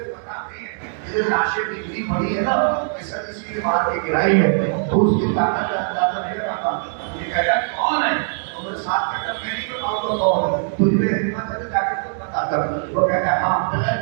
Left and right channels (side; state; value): left; silent; 65 dB below the other